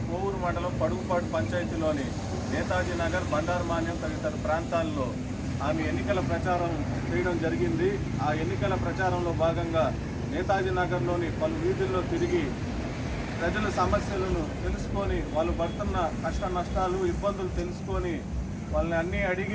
కోవూరు మండలం పడుగుపాటు పంచాయతీలోని నేతాజీ నగర్, బండారు మాన్యం తదితర ప్రాంతాల్లో ఆమె ఎన్నికల ప్రచారం చేయడం జరిగింది. ఆ ఎన్నికల ప్రచారంలో భాగంగా నేతాజీ నగర్లోని పలు వీధుల్లో తిరిగి ప్రజల సమస్యలను తెలుసుకొని, వాళ్ళు పడుతున్న కష్ట నష్టాలు, ఇబ్బందులు తెలుసుకొని వాళ్ళని అన్నీ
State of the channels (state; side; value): identical; both; correlation 1.00